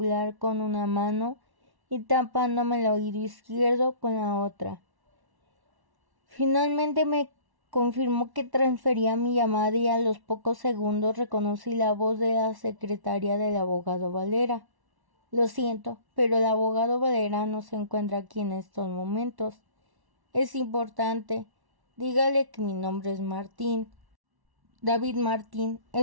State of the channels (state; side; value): late; left; 1.1 ms